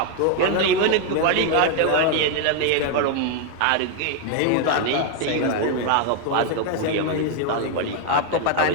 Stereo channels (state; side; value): different; both; correlation 0.01